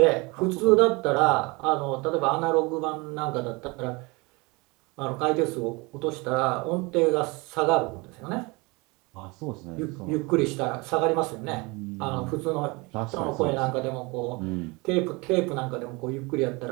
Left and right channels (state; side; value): quieter; left; 26.2 dB